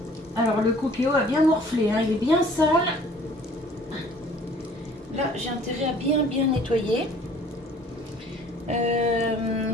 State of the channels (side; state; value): both; normal; correlation 0.53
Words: Alors, le Cookéo a bien morflé, hein, il est bien sale. Là, j'ai intérêt à bien nettoyer.